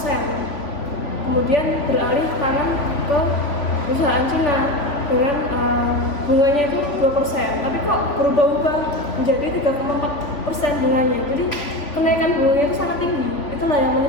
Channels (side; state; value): right; late; 3.5 ms